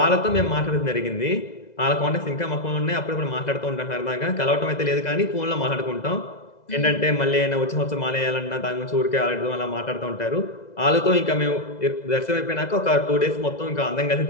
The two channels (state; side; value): late; right; 2.0 ms